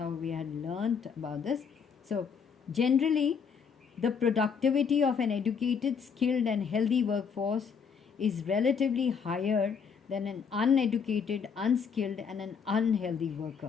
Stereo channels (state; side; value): quieter; right; 6.4 dB